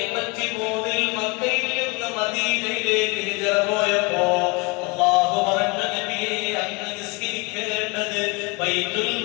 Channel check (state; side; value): quieter; right; 27.8 dB